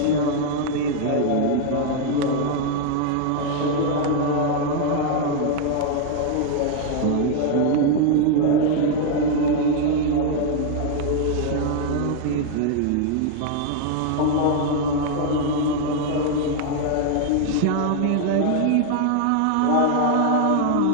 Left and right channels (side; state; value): both; different; correlation 0.00